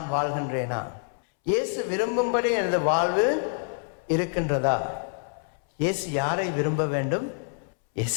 வாழ்கின்றேனா? இயேசு விரும்பும்படி எனது வாழ்வு இருக்கின்றதா? இயேசு யாரை விரும்ப வேண்டும்? இயேசு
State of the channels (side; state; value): right; silent; 60 dB below the other